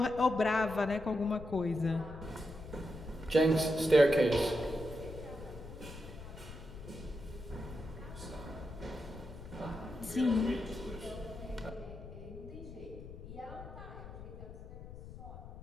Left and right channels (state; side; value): noise; left; rumble, 13 dB below the sound